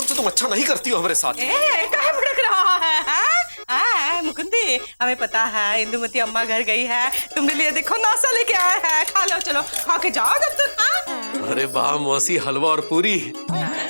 से तुम अच्छा नहीं करती हो हमारे साथ। कहाँ भड़क रहा है मुकुंदी, हमें पता है इंदुमती अम्मा घर गई है, तुमने लिए देखो नाश्ता लेके आया है, खा लो, चलो खा के जाओ दफ्तर। अरे वाह मौसी, हलवा और पूरी।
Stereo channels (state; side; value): inverted; both; correlation -1.00